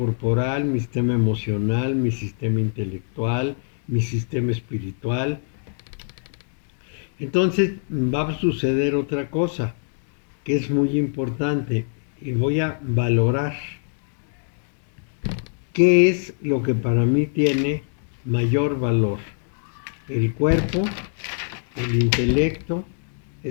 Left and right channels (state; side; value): silent; right; 63 dB below the other